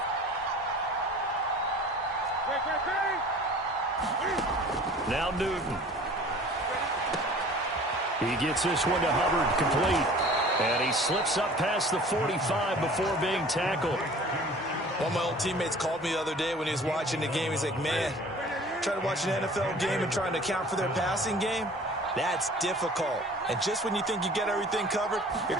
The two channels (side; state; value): both; normal; correlation 0.46